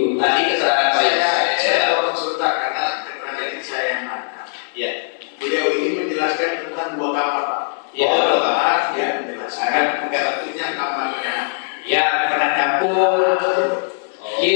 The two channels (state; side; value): silent; right; digital silence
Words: Tadi keterangan Pak Yosef. Saya potong sebentar karena keterangan ini saya yang nangkap. Ya. Beliau ini menjelaskan tentang 2 kamar, Pak. Ya, 2 2 kamar, ya menjelaskan bentuknya kamarnya. Ya, pernah campur.